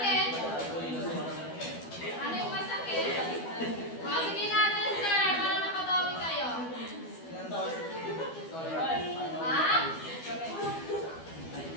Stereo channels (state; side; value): late; right; 12 ms